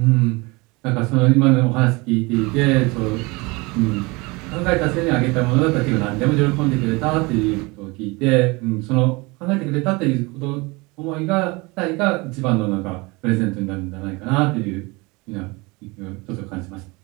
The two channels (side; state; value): left; quieter; 25.3 dB